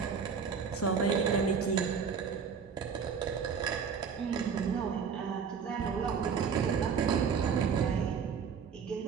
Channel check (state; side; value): quieter; left; 6.3 dB